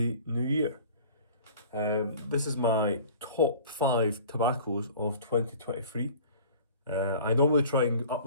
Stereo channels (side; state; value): both; inverted; correlation -0.45